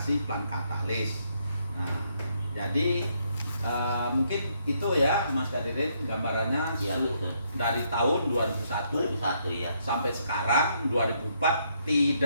Plant Katalis. Nah, jadi mungkin itu ya Mas Kadirin gambarannya Ya, dari tahun 2001 ya. sampai sekarang 2004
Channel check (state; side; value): inverted; both; correlation -0.73